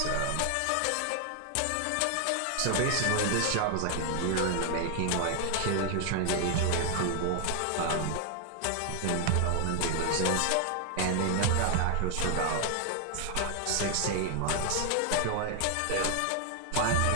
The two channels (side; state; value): both; different; correlation 0.00